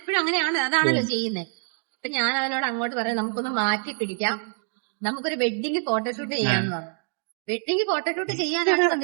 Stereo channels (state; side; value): silent; left; 61 dB below the other